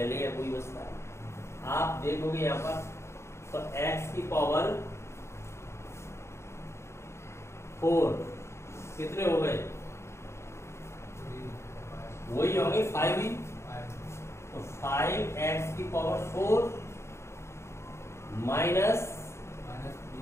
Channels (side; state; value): right; late; 0.13 ms